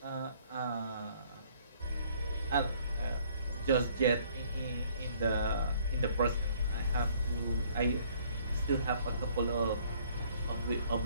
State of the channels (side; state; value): both; inverted; correlation -0.60